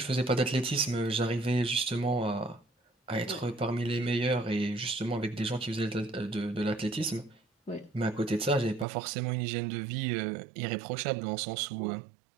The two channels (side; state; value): left; drops out; at 8.8 s